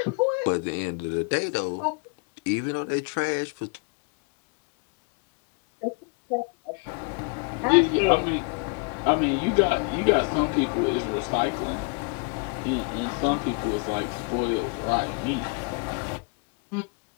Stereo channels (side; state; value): right; quieter; 35.8 dB